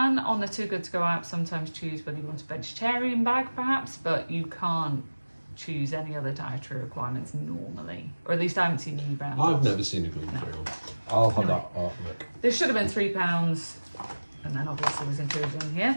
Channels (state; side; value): inverted; both; correlation -1.00